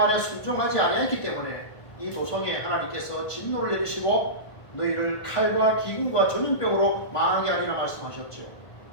순종하지 아니했기 때문에 이 도성에 하나님께서 진노를 내리시고 너희를 칼과 기근과 전염병으로 망하게 하리라 말씀하셨죠.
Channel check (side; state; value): right; late; 1.5 ms